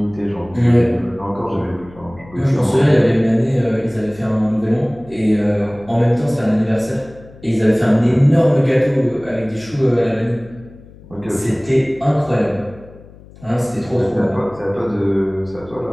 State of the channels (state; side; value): noise; left; hum, 22 dB below the sound